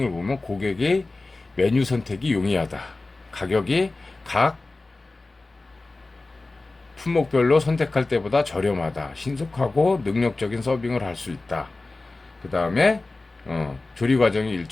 보면, 고객의 메뉴 선택이 용이하다. 가격이 각 품목별로 선택할 때보다 저렴하다. 신속하고 능력적인 서빙을 할 수 있다. 그 다음에 조리 과정이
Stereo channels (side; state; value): right; quieter; 3.3 dB